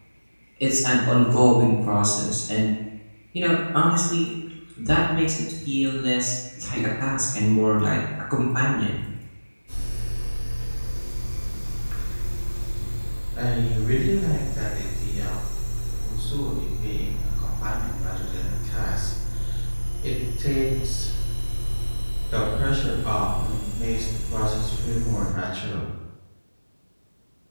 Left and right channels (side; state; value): both; inverted; correlation -1.00